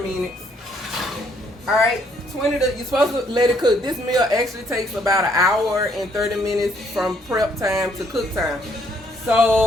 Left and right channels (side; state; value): both; normal; correlation 0.68